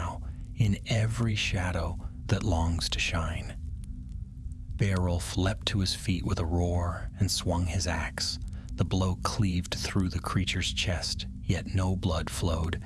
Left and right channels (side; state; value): both; identical; correlation 1.00